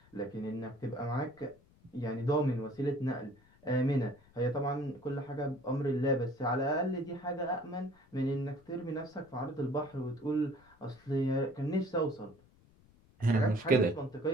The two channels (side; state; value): left; noise; rumble, 29 dB below the sound